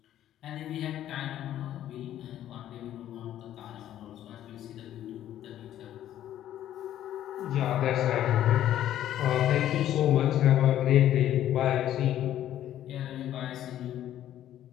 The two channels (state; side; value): quieter; right; 12.0 dB